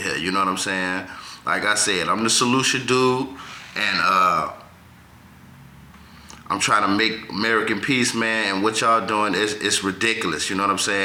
You know what I'm saying? Like I said, I'm the solution dude, and I'm trying to make American peace, man, and what y'all doing is ridiculous, you know what I'm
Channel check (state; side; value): identical; both; correlation 1.00